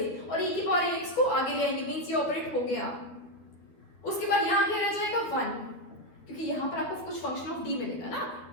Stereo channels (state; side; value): late; right; 13 ms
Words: और e की पावर ax को आगे ले आएंगे मींस ये ऑपरेट हो गया. उसके बाद यहाँ क्या रह जाएगा 1 क्योंकि यहाँ पर आपको कुछ फंक्शन ऑफ d मिलेगा ना,